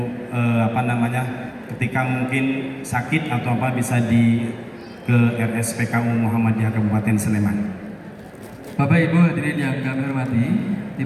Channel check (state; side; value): identical; both; correlation 1.00